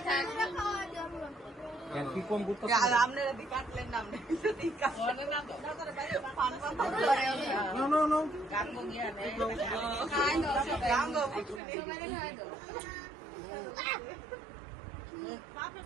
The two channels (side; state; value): left; drops out; at 11.6 s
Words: কি কম করতে